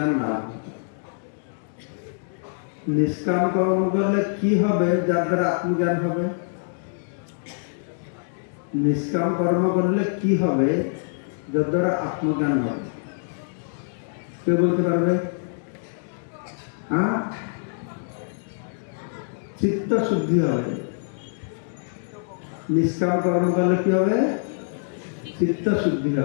লাভ হবে। নিষ্কাম কর্ম করলে কি হবে যার দ্বারা আত্মজ্ঞান হবে? নিষ্কাম কর্ম করলে কি হবে যার দ্বারা আত্মজ্ঞান হবে? কেউ বলতে পারবে? হ্যাঁ, চিত্ত শুদ্ধি হবে। নিষ্কাম কর্ম করলে কি হবে? চিত্ত শুদ্ধি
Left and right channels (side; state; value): right; silent; digital silence